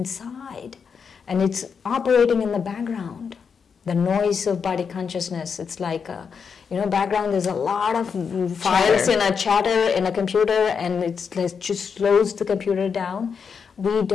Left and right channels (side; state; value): right; quieter; 6.2 dB